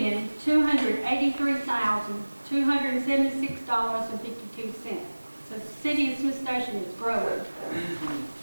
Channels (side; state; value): both; inverted; correlation -1.00